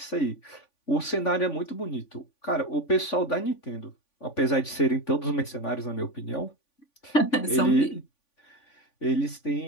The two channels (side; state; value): right; late; 3.5 ms